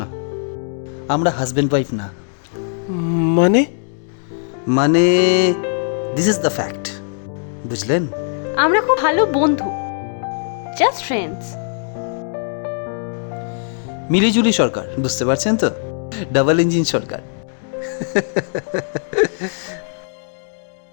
না। আমরা হাজবেন্ড ওয়াইফ না। মানে মানে দিস ইজ দ্য ফ্যাক্ট, বুঝলেন? আমরা খুব ভালো বন্ধু, জাস্ট ফ্রেন্ডস। মিলিজুলি সরকার, বুঝতে পারছেন তো? ডাবল ইঞ্জিন সরকার।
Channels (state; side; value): silent; right; digital silence